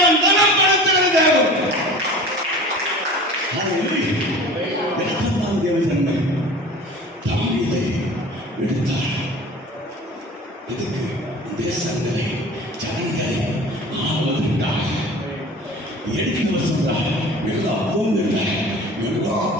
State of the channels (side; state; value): both; normal; correlation 0.40